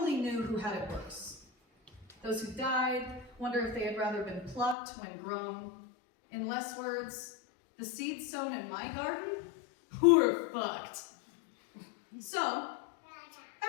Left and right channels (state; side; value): drops out; right; at 4.8 s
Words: knew who had it worse. Those who died wonder if they had rather been plucked when grown. In less words, the seeds sown in my garden were fucked. So,